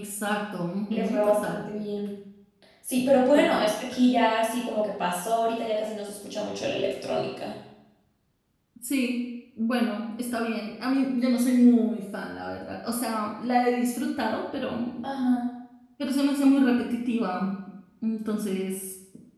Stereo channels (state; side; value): identical; both; correlation 1.00